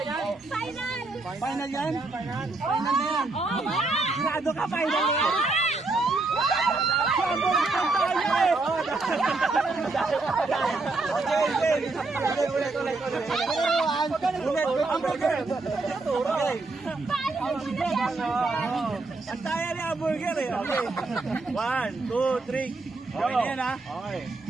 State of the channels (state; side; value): quieter; left; 3.4 dB